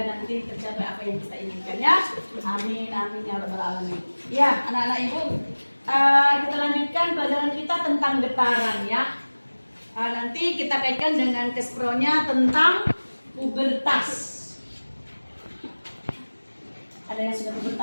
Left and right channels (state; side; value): inverted; both; correlation -1.00